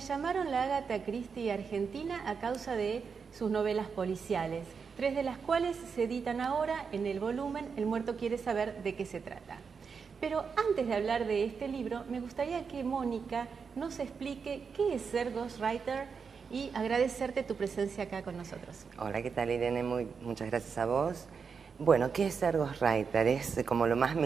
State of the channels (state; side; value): quieter; left; 5.8 dB